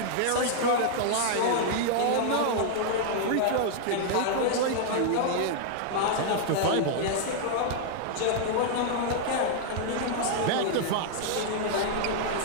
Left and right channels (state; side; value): different; both; correlation -0.01